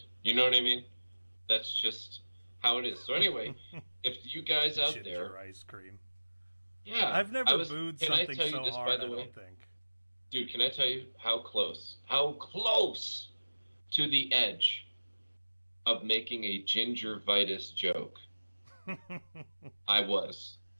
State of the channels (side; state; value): both; inverted; correlation -1.00